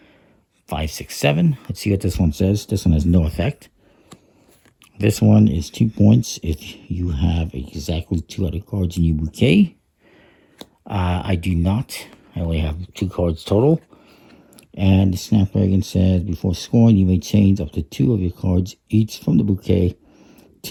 5, 6, 7. Let's see what this one says. This one has no effect. This one is 2 points if you have exactly 2 other cards in your bouquet. I do not. I only have 2 cards total. And the Snapdragon says, before scoring, you may change up to 2 of your cards, each from the bouquet,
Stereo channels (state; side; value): identical; both; correlation 1.00